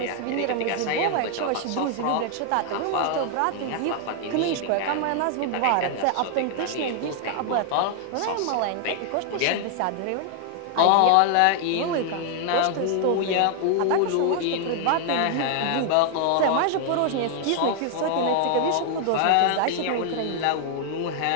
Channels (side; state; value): both; different; correlation 0.00